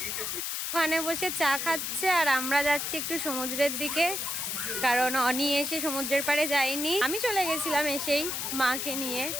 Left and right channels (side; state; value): left; noise; hiss, 2 dB below the sound